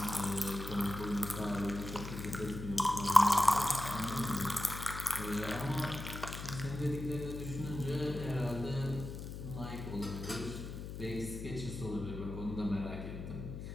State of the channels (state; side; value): noise; left; hum, 8 dB below the sound